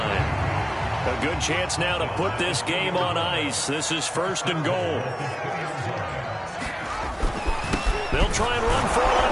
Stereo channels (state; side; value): identical; both; correlation 1.00